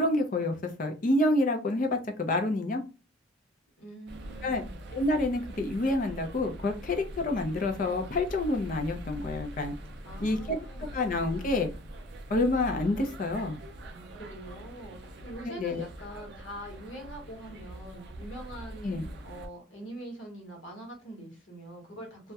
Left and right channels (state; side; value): normal; both; correlation 0.50